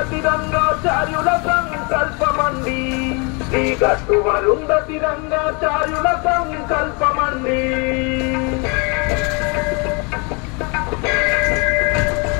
రంగాచార్యుల సంకల్పమండి శ్రీ గట్టు అరుంధతి రంగాచార్యుల సంకల్పమండి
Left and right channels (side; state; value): right; quieter; 31.9 dB